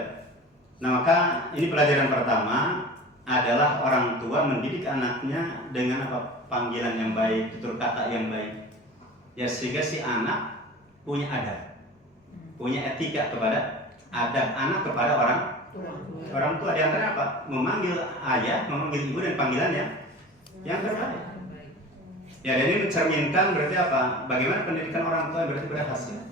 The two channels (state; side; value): normal; both; correlation 0.37